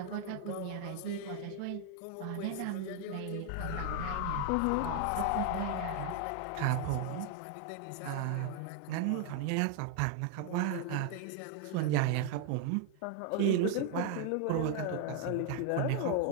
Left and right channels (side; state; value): both; different; correlation 0.00